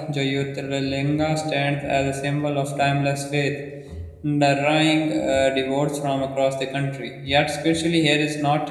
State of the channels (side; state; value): both; identical; correlation 1.00